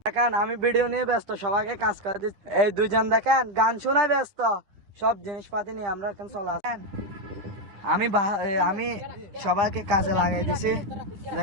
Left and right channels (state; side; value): late; left; 10 ms